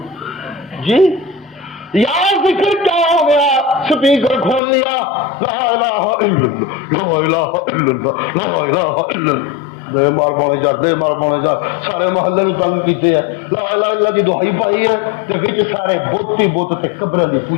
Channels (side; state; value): right; drops out; at 4.6 s